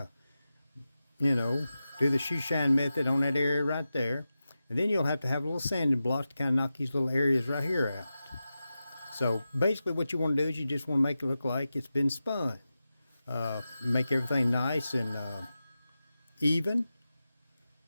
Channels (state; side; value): inverted; both; correlation -0.92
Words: you know, do the shoe shine method on that area right there. And then you'll have to have a little sanding block to kind of knock these little areas right here out. So basically what you want to do is you just want to make it look like it's been spun. Make everything nice and even,